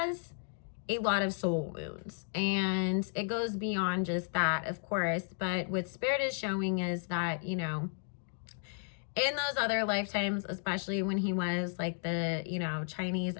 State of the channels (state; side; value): silent; right; 55 dB below the other